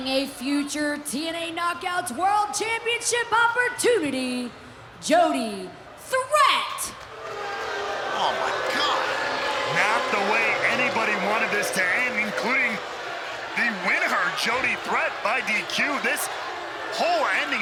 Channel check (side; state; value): both; identical; correlation 1.00